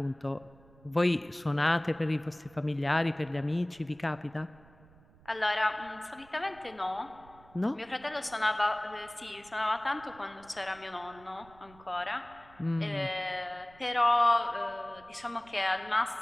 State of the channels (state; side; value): noise; right; rumble, 25 dB below the sound